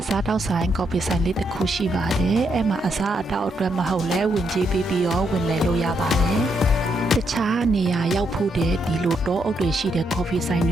စားတောက်ဆိုင်ကော်ဖီဆိုင်လေးတစ်ခုရှိပါတယ်အဲ့မှာအစားအသောက်အတွက်မဟုတ်လဲဝင်ကြေးပြီးတော့ဝင်လဲလို့ရပါတယ်တခြားနေရာရောက်ဖို့တဲ့ဒီလိုတောအုပ်တွေရှိတဲ့ကော်ဖီဆိုင်တ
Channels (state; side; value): normal; both; correlation 0.78